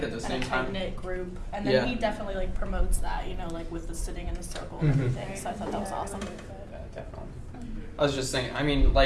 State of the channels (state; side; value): identical; both; correlation 1.00